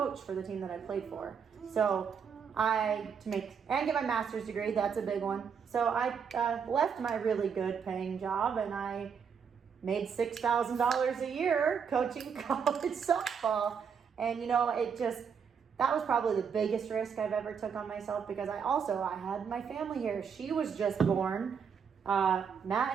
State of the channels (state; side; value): quieter; left; 6.8 dB